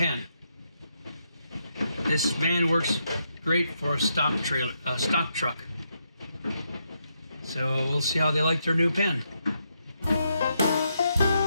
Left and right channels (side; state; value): both; inverted; correlation -0.80